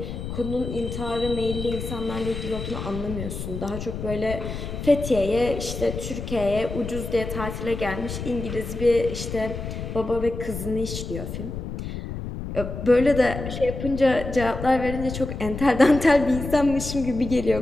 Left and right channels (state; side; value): noise; left; rumble, 7 dB below the sound